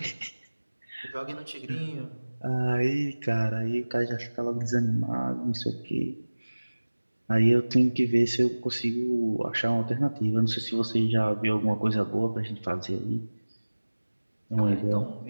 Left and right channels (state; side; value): inverted; both; correlation -1.00